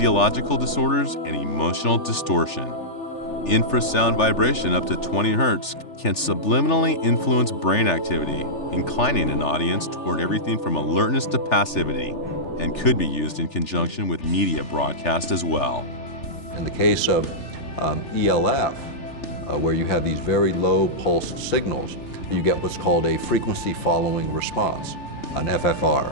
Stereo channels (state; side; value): late; right; 3.4 ms